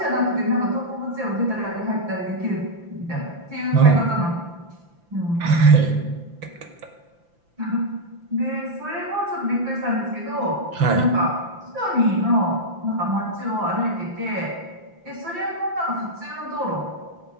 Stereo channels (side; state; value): left; late; 5.9 ms